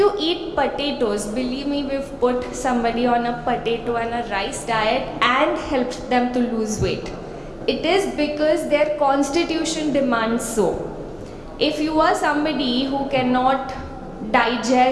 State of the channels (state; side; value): identical; both; correlation 1.00